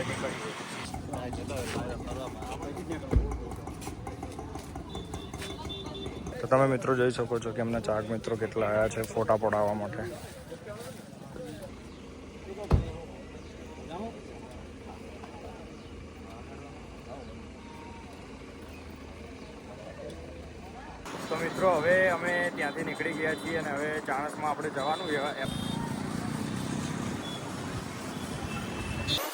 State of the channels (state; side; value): identical; both; correlation 1.00